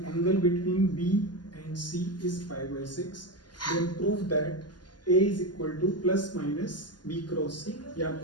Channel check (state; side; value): late; right; 0.70 ms